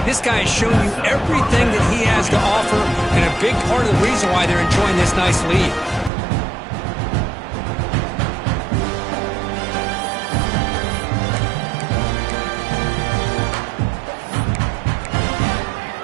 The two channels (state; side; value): drops out; left; at 6.1 s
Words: this guy has shown you everything that he has to offer, and a big part of the reason why they're enjoying this nice lead.